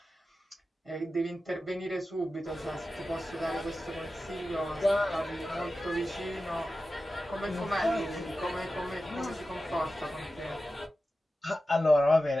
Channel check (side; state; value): both; normal; correlation 0.93